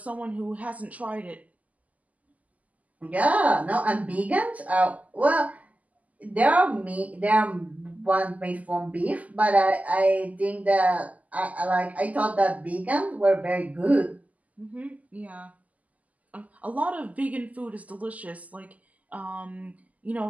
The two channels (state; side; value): late; left; 0.074 ms